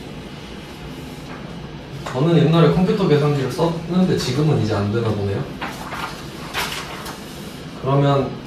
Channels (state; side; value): identical; both; correlation 1.00